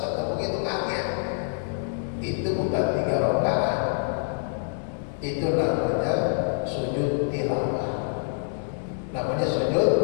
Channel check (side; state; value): right; silent; digital silence